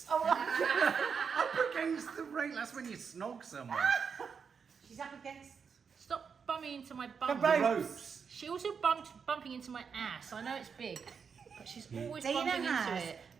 Oh, Up against the rail. That's when you snog someone. she's up against Stop bumping into my bum. The The rope. ropes. She also bumping into my ass. I know it's big, but she's always Dana bumping into has it.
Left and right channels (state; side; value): quieter; left; 6.2 dB